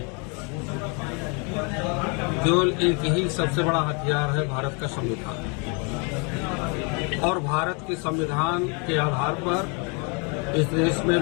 केवल एक ही सबसे बड़ा हथियार है, भारत का संविधान। और भारत के संविधान के आधार पर इस देश में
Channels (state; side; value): quieter; right; 34.0 dB